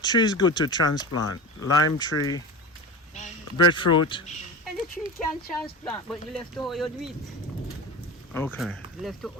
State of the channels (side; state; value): both; normal; correlation 0.29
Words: tree is good to transplant? Lime tree, breadfruit. And the tree can transplant, but you left to how you do it. Okay. You left to